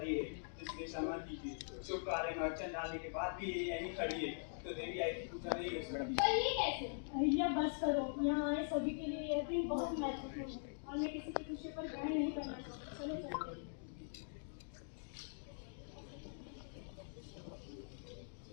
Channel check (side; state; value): right; silent; digital silence